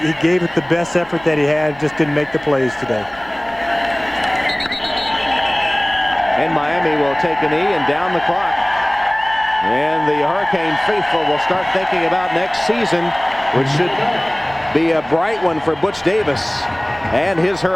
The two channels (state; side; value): noise; right; hum, 26 dB below the sound